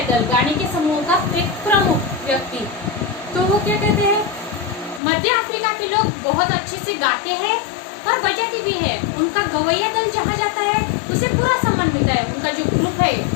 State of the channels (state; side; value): drops out; right; at 5.0 s